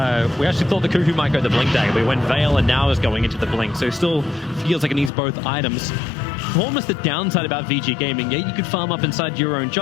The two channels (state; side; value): drops out; right; at 5.1 s